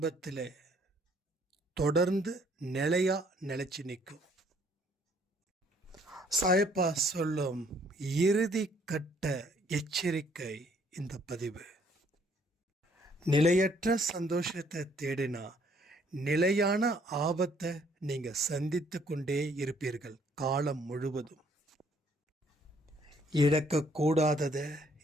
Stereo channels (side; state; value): both; normal; correlation 0.64